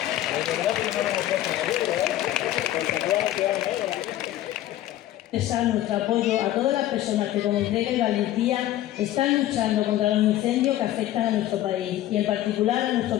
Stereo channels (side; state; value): right; quieter; 13.7 dB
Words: Expresar nuestro apoyo a todas las personas que con entrega y valentía están luchando contra los incendios que afectan a nuestro país y en particular a